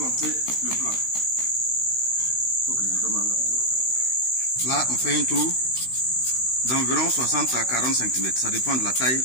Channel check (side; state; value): right; late; 16 ms